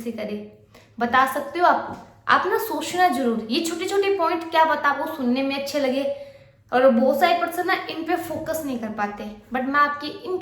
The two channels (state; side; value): identical; both; correlation 1.00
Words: करे, बता सकते हो आप ना सोचना जरूर। ये छोटे छोटे पॉइंट क्या बता, आपको सुनने में अच्छे लगे, और बहुत सारे पर्सन ना इन पे फोकस नहीं कर पाते, बट मैं आपकी इन